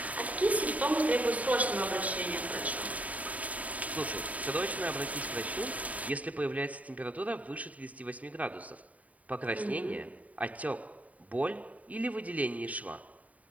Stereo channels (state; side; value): late; left; 0.071 ms